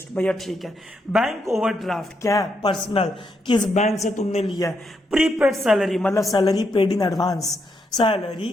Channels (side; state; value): both; normal; correlation 0.80